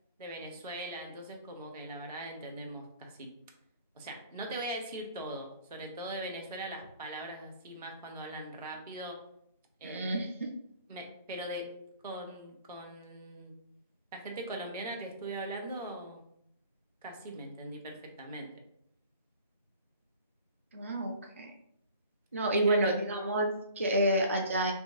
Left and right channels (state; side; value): inverted; both; correlation -0.49